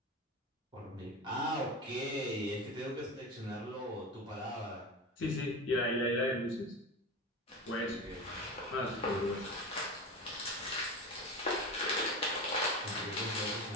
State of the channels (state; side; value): normal; both; correlation 0.26